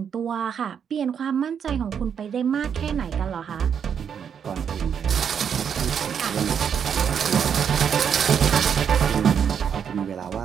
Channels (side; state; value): left; quieter; 7.7 dB